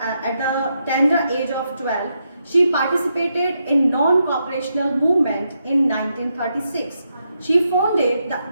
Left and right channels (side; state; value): both; inverted; correlation -0.82